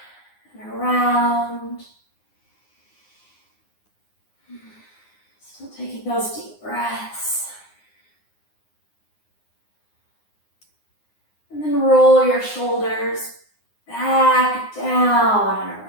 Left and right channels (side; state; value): right; late; 9.7 ms